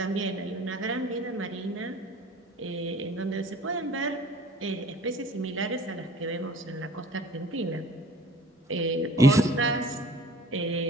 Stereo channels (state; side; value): normal; both; correlation 0.47